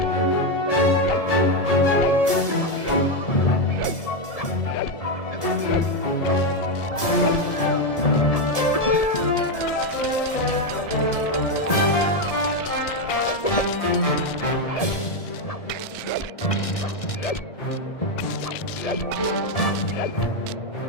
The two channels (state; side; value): late; right; 1.7 ms